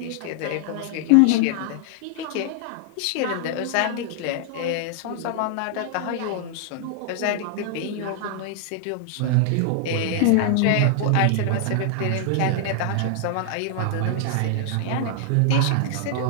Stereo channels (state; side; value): different; both; correlation 0.00